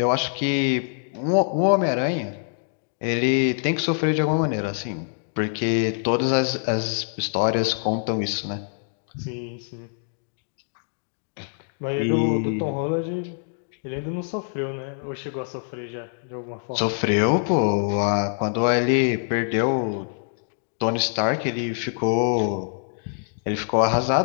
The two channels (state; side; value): silent; right; digital silence